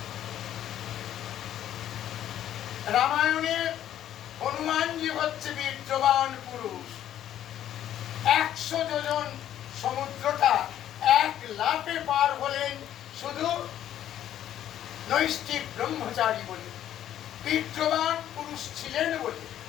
রামায়ণে হনুমানজি হচ্ছে বীর্যবান পুরুষ। 100 যোজন সমুদ্রটা এক লাফে পার হলেন শুধু নৈষ্ঠিক ব্রহ্মচারী বলে, বীর্যবান পুরুষ ছিলেন বলে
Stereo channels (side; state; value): right; quieter; 11.3 dB